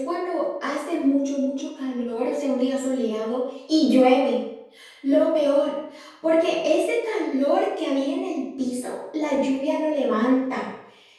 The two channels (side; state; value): both; identical; correlation 1.00